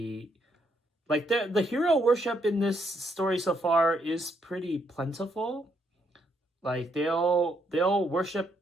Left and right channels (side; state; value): both; normal; correlation 0.74